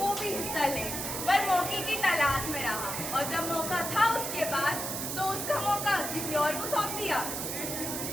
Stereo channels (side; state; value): right; noise; hiss, 4 dB below the sound